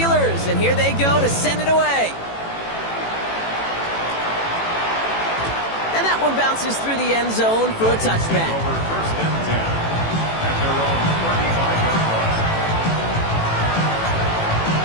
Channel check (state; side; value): late; right; 18 ms